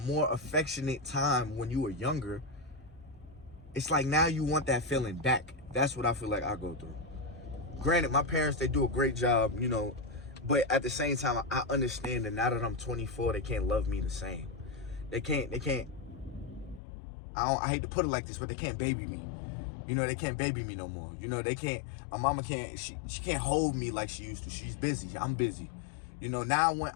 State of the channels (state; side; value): drops out; right; at 16.8 s